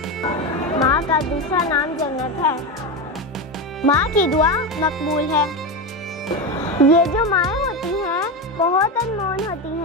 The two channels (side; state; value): both; normal; correlation 0.16